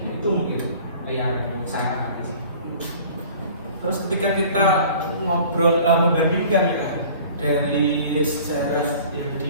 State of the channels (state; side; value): inverted; both; correlation -0.47